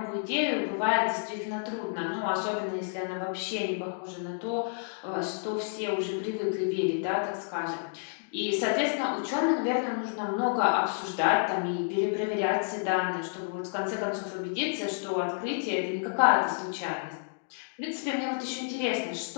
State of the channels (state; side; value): silent; right; digital silence